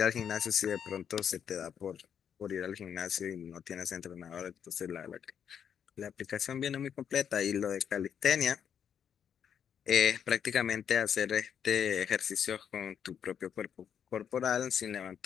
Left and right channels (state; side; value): quieter; right; 8.2 dB